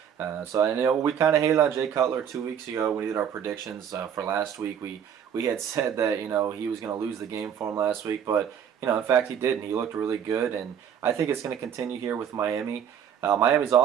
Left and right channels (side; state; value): left; quieter; 8.4 dB